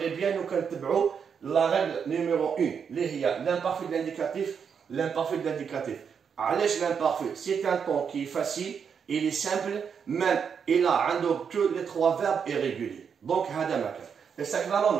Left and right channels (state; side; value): quieter; left; 6.8 dB